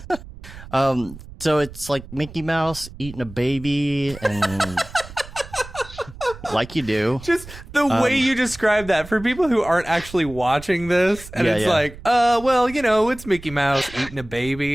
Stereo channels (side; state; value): right; noise; rumble, 16 dB below the sound